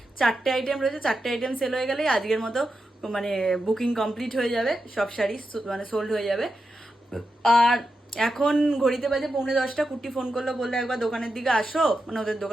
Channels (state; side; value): normal; both; correlation 0.88